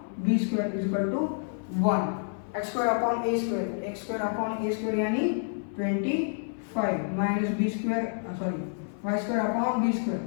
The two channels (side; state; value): right; silent; 56 dB below the other